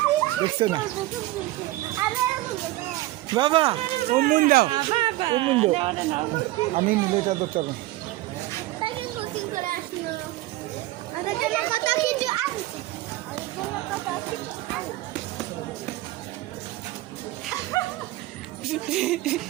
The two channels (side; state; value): left; quieter; 17.7 dB